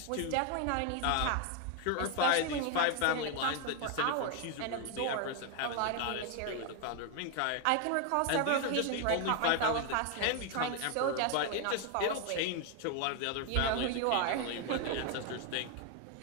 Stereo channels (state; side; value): different; both; correlation 0.00